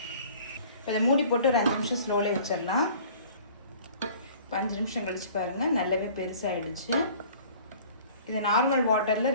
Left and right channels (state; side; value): inverted; both; correlation -0.49